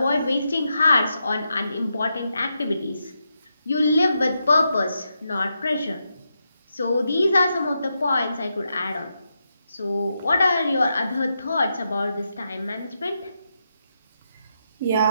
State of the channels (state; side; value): inverted; both; correlation -0.85